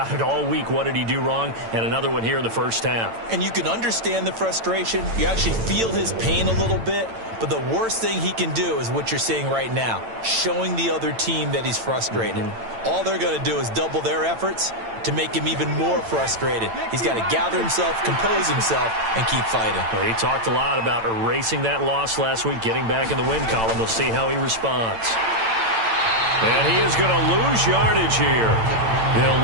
it all week. What did he do wrong? And another one here in the first half. And you can understand the frustration. You actually feel his pain a little bit. But the worst thing he can do is what you're seeing right now, showing the other team that he's frustrated. All they're going to do is double their efforts to make him even more frustrated. He's got to gather himself, compose himself, and keep fighting. Well, he talked a lot about erasing that loss last week, getting back in the win column. We'll see how he responds. And he is going to lose yardage here.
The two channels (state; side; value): late; left; 8.9 ms